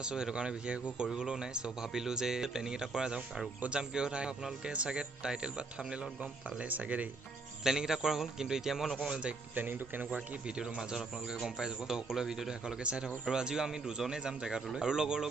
আছোঁ সেইটো কাৰণে বিশেষ একো কৰিবলৈও নাই। চ' ভাবিলোঁ যে প্লেনিং এটা কৰা যাওক। আৰু ক'ত যাম কি কথা আপোনালোকে চাগে টাইটেল বা থাম্বনেইলত গম পালে চাগে দেই। প্লেনিং এটা কৰা হ'ল, কিন্তু এতিয়া মই নকওঁ যে প্লেনিংটো কেনেকুৱা কি, ভিডিঅ'টোৰ মাজত আপোনালোকে গম পাই যাব। ত' সকলোৱে ভিডিঅ'টো শেষলৈকে চাই থাকক। আৰু আজিও আমি দুজনেই যাম জেগাটোলৈ, আৰু লগৰ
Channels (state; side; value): quieter; left; 3.7 dB